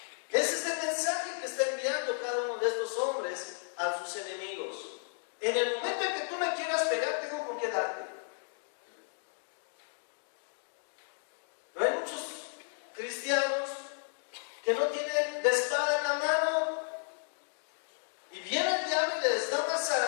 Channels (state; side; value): silent; right; 55 dB below the other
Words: Ese es el mensaje que está enviando cada uno de estos hombres a sus enemigos. En el momento en que tú me quieras pegar, tengo con qué darte. No hay muchos cristianos que no tienen la espada en la mano y viene el diablo y les da una